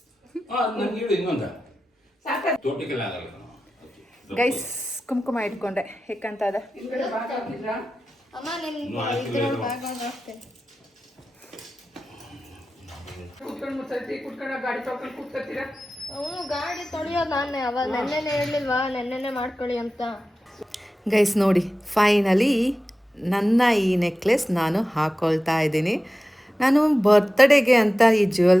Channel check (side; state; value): both; normal; correlation 0.94